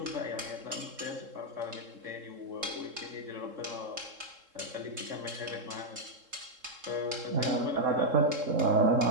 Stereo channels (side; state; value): left; late; 3.7 ms